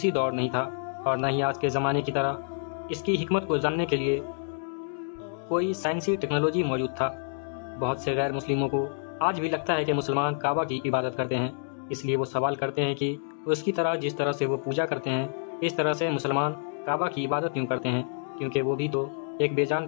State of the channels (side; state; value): right; silent; digital silence